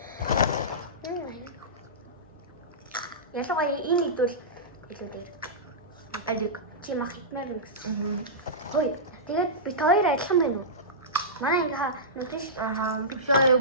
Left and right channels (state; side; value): normal; both; correlation -0.17